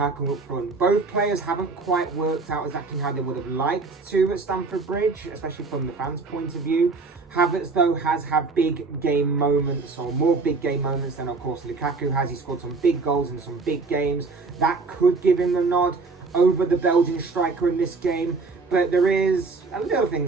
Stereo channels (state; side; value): quieter; left; 4.1 dB